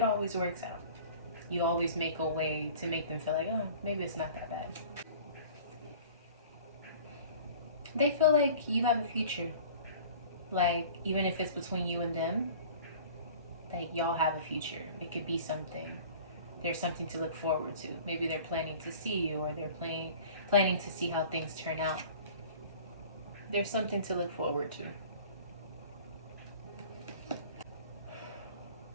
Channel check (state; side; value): inverted; both; correlation -0.45